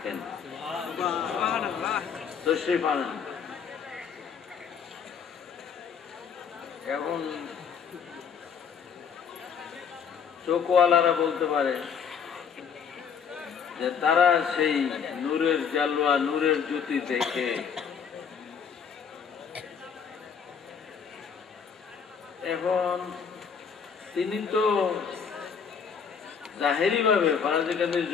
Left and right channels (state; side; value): quieter; right; 6.9 dB